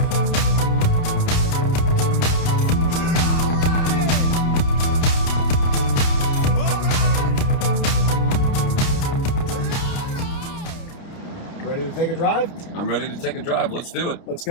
Ready to take a drive? I'm ready to take a drive. Let's do it. Let's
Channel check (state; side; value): late; right; 30 ms